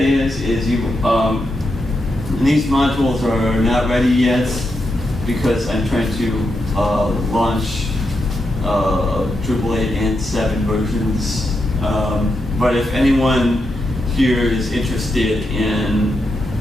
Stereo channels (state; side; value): normal; both; correlation 0.84